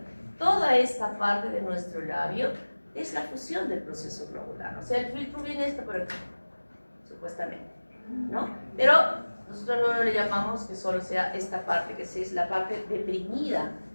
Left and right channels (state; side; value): inverted; both; correlation -1.00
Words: toda esta parte de nuestro labio es la fusión del proceso globular. O sea, el filtro viene esto por aquí, supuestamente, ¿no? Pero nosotros no le llamamos que solo sea esta parte, que es la parte deprimida